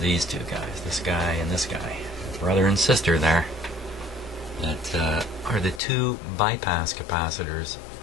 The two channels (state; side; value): drops out; right; at 5.8 s